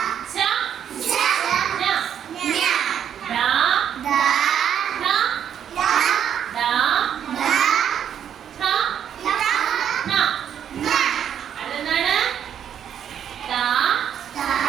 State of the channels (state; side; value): quieter; left; 9.0 dB